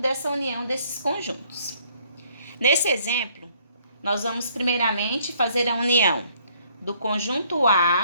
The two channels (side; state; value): both; inverted; correlation -0.64